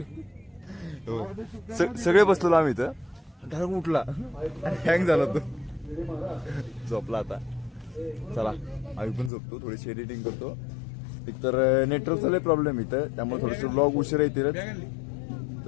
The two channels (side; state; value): right; drops out; at 9.3 s